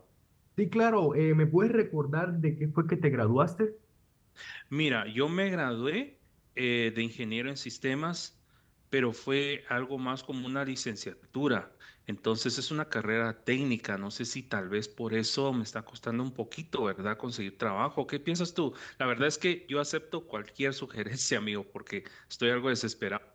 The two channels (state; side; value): identical; both; correlation 1.00